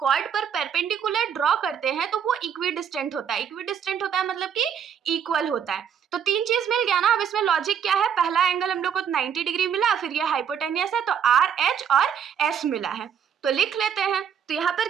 कॉर्ड पर परपेंडिकुलर ड्रॉ करते हैं तो वो इक्विडिस्टेंट होता है। इक्विडिस्टेंट होता है मतलब कि इक्वल होता है। तो तीन चीज मिल गया ना। अब इसमें लॉजिक क्या है, पहला एंगल हम लोग को 90 डिग्री मिला, फिर ये हाइपोटेनियस है तो आर, एच और एस मिला है। तो लिख लेते हैं। तो यहाँ पर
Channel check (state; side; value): quieter; left; 8.0 dB